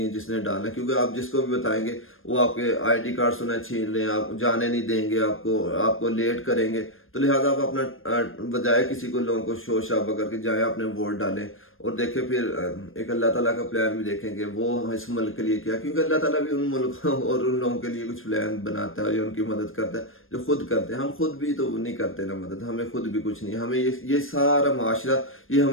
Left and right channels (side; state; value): right; late; 0.60 ms